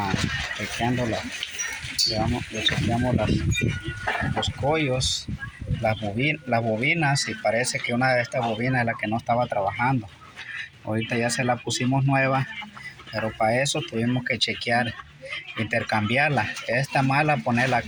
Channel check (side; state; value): both; identical; correlation 1.00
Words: chequeando le chequeamos los collos, las bobinas, y parece que una de estas bobinas es la que no estaba trabajando. Ahorita ya se la pusimos nueva, pero para eso tuvimos que chequear, intercambiarla. Esta mala, ponerla